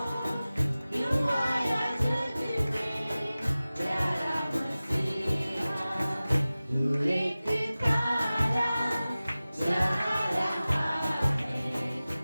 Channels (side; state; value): both; inverted; correlation -0.97